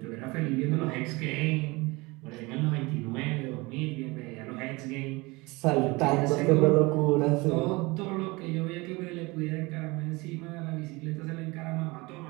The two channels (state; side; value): quieter; left; 24.1 dB